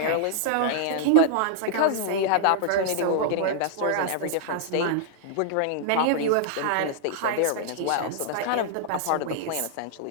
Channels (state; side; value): different; both; correlation -0.01